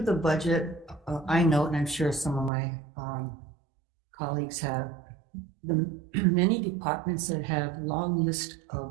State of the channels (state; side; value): drops out; left; at 2.5 s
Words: the budget, I note, and I'm sure some of my colleagues have, the many departments that have long list